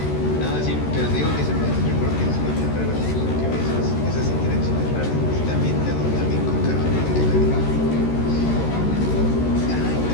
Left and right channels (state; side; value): late; right; 13 ms